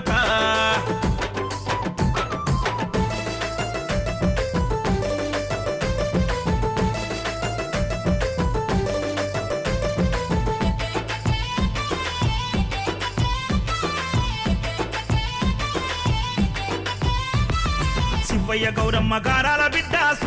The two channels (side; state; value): both; identical; correlation 1.00